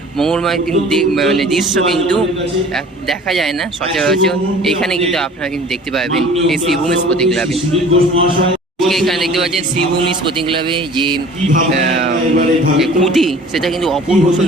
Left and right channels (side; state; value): both; normal; correlation 0.46